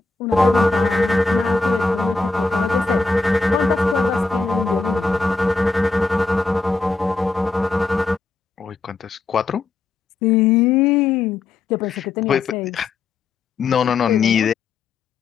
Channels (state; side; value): quieter; right; 4.0 dB